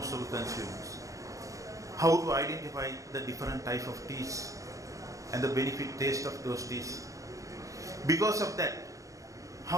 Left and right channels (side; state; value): left; late; 0.16 ms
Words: of the consumers. How to identify the different type of teas and the benefit taste of those teas. Because of that,